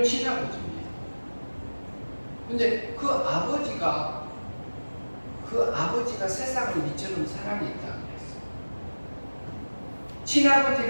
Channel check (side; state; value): both; inverted; correlation -1.00